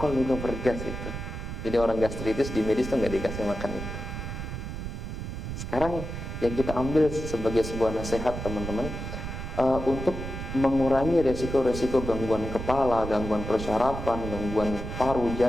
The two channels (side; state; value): right; noise; rumble, 6 dB below the sound